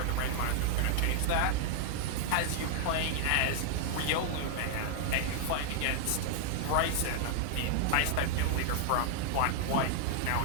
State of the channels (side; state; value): both; different; correlation 0.00